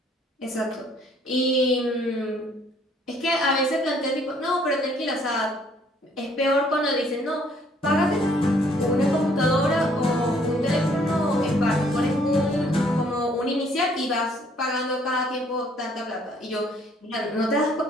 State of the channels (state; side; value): normal; both; correlation 0.63